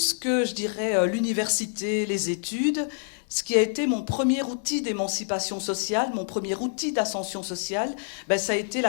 que, je dirais, l'université, les études, ce qui a été mon premier outil d'émancipation sociale, mon premier outil d'ascension sociale, ben, ça a été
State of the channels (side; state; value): right; silent; digital silence